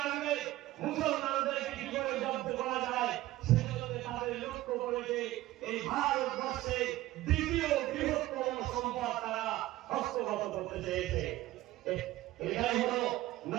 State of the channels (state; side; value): quieter; left; 16.5 dB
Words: মুসলমানদেরকে কি করে জব্দ করা যায় সেজন্য তাদের লক্ষ্য করেছে এই ভারতবর্ষে দ্বিতীয় বৃহত্তম সম্পদ তারা হস্তগত করতে চেয়েছে। এটাই হলো